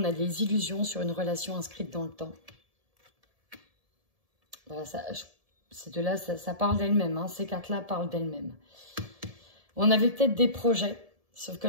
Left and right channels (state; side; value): late; left; 1.7 ms